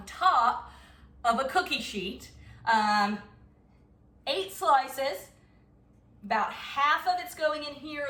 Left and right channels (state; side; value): identical; both; correlation 1.00